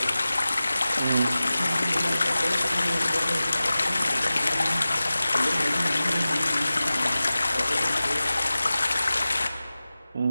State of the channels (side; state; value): both; inverted; correlation -0.96